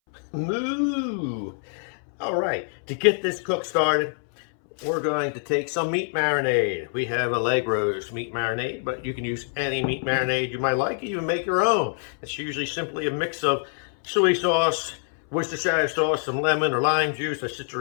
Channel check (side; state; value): right; silent; 62 dB below the other